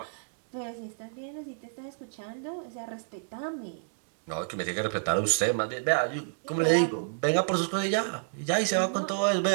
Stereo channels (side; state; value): left; silent; digital silence